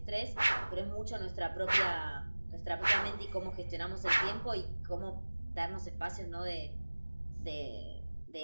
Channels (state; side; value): inverted; both; correlation -1.00